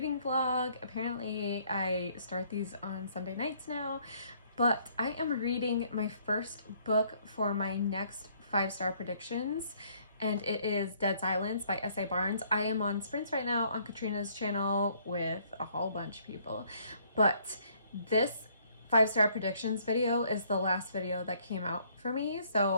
vlog. Apparently I start these on Sunday nights now, but I am reading my first book for my next 5-star predictions, and it is Dead Silence by S.A. Barnes. I am on sprints right now on Katrina's channel with a whole bunch of people, but this 5-star predictions video is the last video that came out for me,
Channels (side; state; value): both; inverted; correlation -0.64